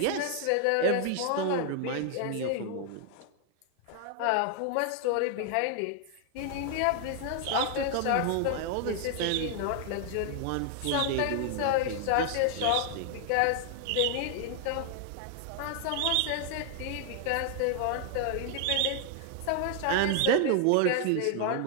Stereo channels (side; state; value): both; different; correlation 0.00